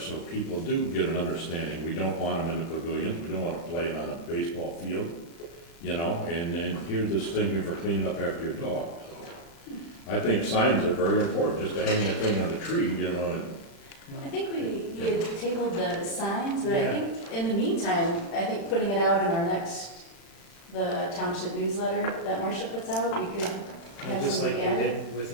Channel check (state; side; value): late; right; 35 ms